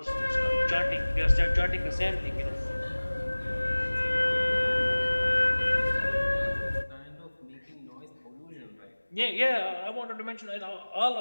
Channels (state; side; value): inverted; both; correlation -1.00